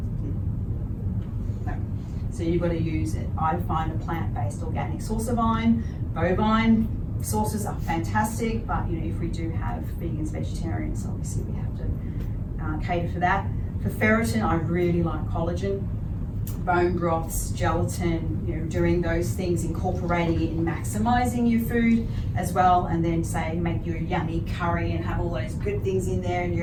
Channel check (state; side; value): identical; both; correlation 1.00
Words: No. So you've got to use it. I find a plant-based organic source of iron. Bovine sources are fantastic, but you know, if we do have vegans, vegetarians, obviously we have to cater for that. For ferritin, I really like collagen, bone broths, gelatin, you know, doing those things, incorporating it and maximizing your food as well, and then say make your yummy curry and have all those good things in there, and